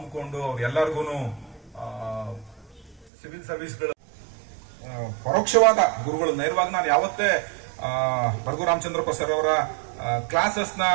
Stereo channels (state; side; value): drops out; left; at 3.1 s